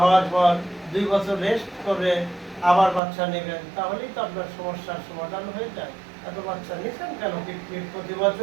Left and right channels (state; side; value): drops out; left; at 3.0 s